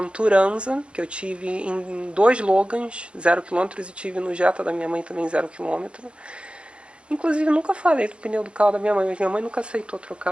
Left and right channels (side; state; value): left; late; 0.059 ms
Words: Turanza, que eu tive em 2 Logans, 0 km, e tive no Jetta da minha mãe também 0 km. Inclusive, nunca falei do pneu do carro da minha mãe, mas minha mãe nunca aceitou